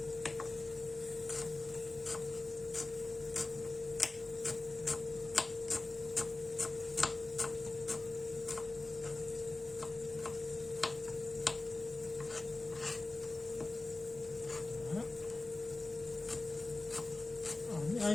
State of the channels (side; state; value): right; quieter; 3.0 dB